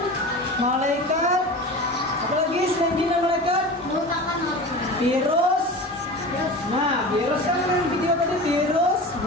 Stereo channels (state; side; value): normal; both; correlation 0.33